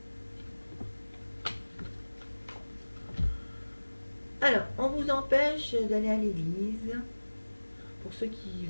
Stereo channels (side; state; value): both; inverted; correlation -1.00